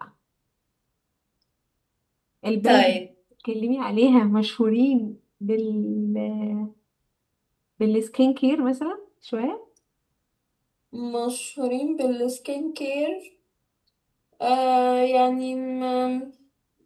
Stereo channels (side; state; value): both; identical; correlation 1.00